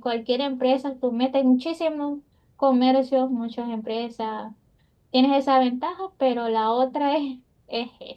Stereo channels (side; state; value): both; identical; correlation 1.00